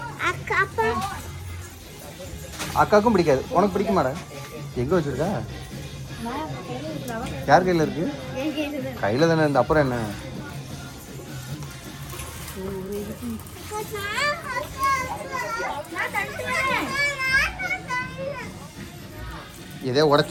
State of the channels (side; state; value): both; identical; correlation 1.00